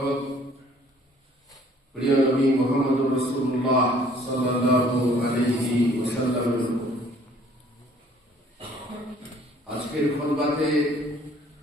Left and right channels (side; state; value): both; normal; correlation 0.57